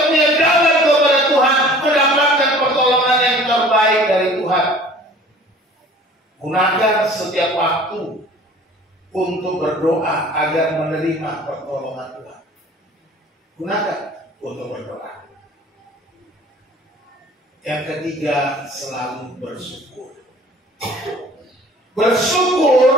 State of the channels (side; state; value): both; normal; correlation 0.48